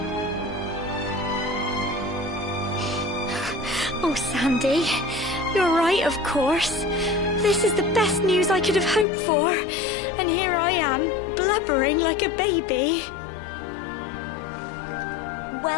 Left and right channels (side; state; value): right; drops out; at 9.1 s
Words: Oh, Sandy, you're right, of course. This is the best news I could have hoped for. And here I am, blubbering like a baby.